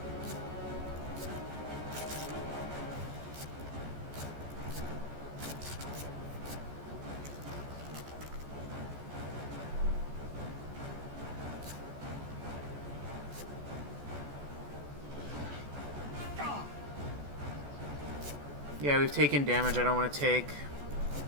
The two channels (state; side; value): late; left; 14 ms